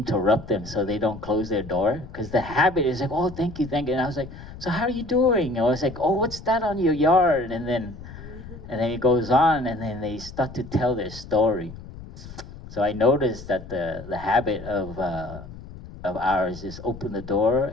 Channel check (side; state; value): left; noise; rumble, 14 dB below the sound